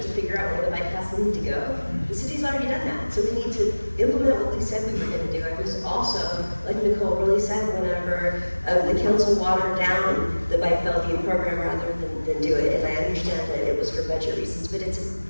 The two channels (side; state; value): both; inverted; correlation -1.00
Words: to figure out where the bike paths need to go. The city's already done that, so we need to implement what we said we were going to do. I was also, like Nicole really said, whenever the council watered down the Bike Bellevue program rather than do it, and I understand that it was for budget reasons, but it's